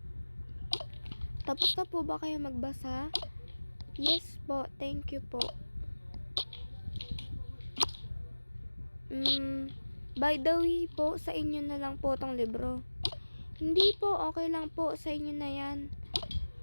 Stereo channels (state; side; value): inverted; both; correlation -1.00